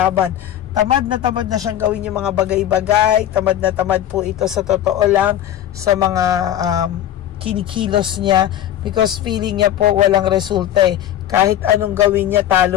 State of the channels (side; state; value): right; quieter; 11.5 dB